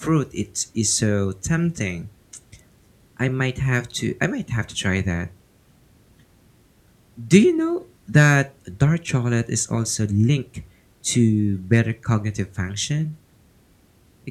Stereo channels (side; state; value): both; identical; correlation 1.00